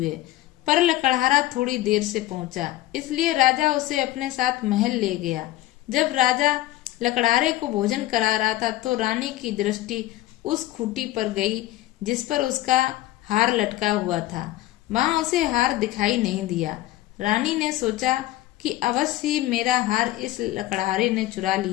पर लकड़हारा थोड़ी देर से पहुंचा, इसलिए राजा उसे अपने साथ महल ले गया। जब राजा लकड़हारे को भोजन करा रहा था तो रानी की दृष्टि उस खूंटी पर गई जिस पर उसका हार लटका हुआ था। वहां उसे हार दिखाई नहीं दिया। रानी ने सोचा कि अवश्य ही मेरा हार इस लकड़हारे ने चुरा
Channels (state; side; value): quieter; right; 15.8 dB